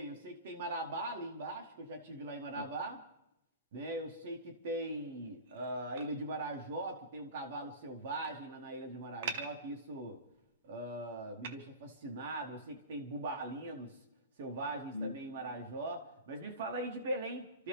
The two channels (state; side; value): inverted; both; correlation -0.33